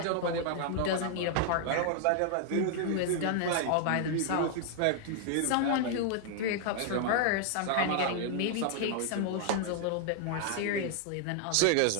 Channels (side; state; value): both; different; correlation 0.00